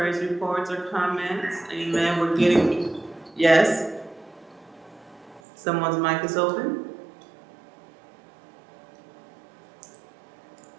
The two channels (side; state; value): left; drops out; at 5.4 s